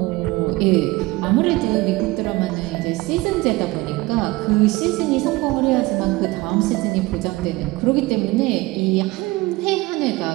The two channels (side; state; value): left; quieter; 20.8 dB